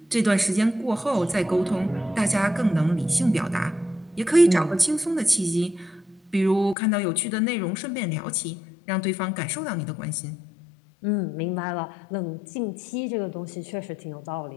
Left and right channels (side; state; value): right; drops out; at 6.8 s